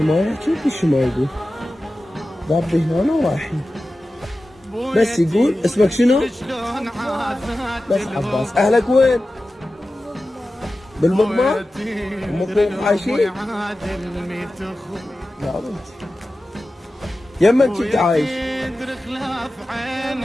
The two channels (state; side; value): normal; both; correlation 0.94